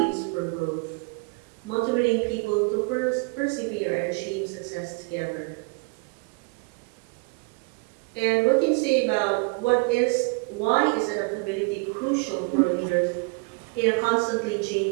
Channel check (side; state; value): left; quieter; 31.0 dB